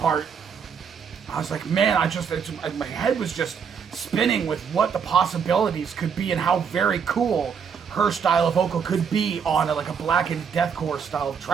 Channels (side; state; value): left; quieter; 6.8 dB